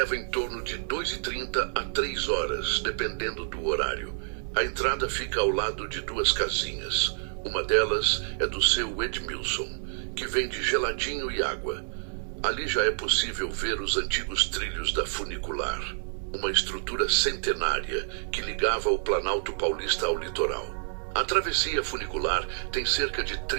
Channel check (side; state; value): left; silent; 59 dB below the other